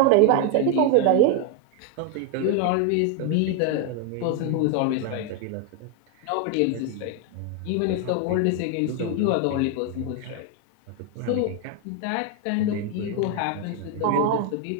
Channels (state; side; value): different; both; correlation 0.01